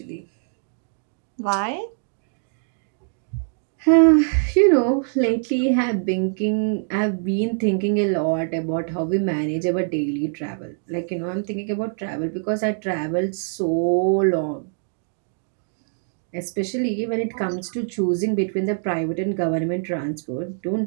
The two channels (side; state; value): left; silent; 63 dB below the other